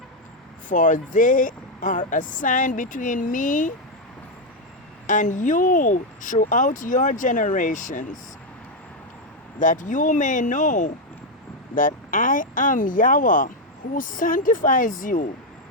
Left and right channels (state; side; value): normal; both; correlation 0.04